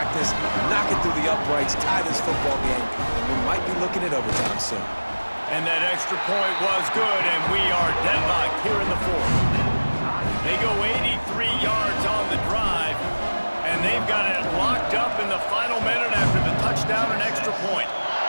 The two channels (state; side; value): inverted; both; correlation -1.00